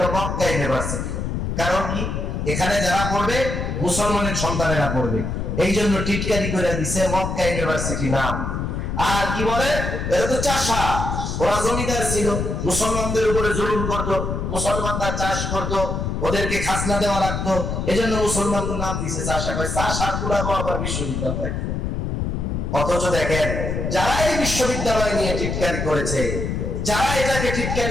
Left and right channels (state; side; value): noise; left; rumble, 2 dB below the sound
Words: মক্কা ইউনিভার্সিটি। কারণ কি? এখানে যারা পড়বে মুসলমানের সন্তানেরা পড়বে, এই জন্য টিটকারি করে দিছে মক্কা ইউনিভার্সিটি নাম। আর কি বলে, এরা তো চাষা, ওরা জমিদার ছিল, মুসলমানদের উপরে জুলুম করতো, মুসলমানরা চাষ করতো, ওদেরকে খাজনা দেওয়া লাগতো, এজন্য মুসলমানদের নাম দিয়েছে চাষা, কয় চাষার গুলাবো আবার বিশ্ববিদ্যালয়। অথচ দেখেন যারা এই বিশ্ববিদ্যালয় নিয়ে টিটকারি করেছে, যারা এটাকে